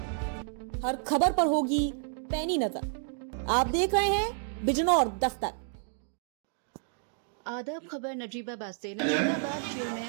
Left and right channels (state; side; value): silent; left; 57 dB below the other